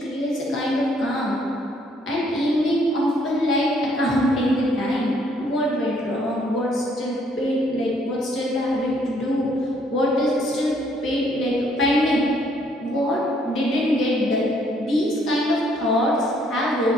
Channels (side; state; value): both; normal; correlation 0.66